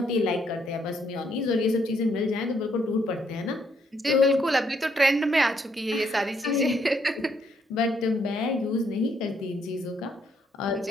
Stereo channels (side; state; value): both; normal; correlation 0.72